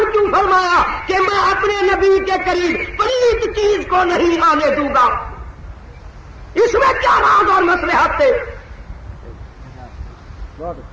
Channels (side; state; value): both; identical; correlation 1.00